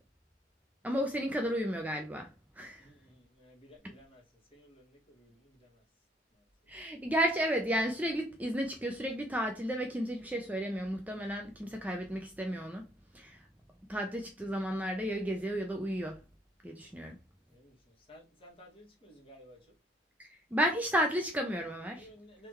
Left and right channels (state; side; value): normal; both; correlation 0.65